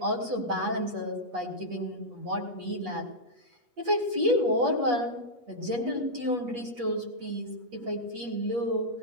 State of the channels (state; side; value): late; left; 8.3 ms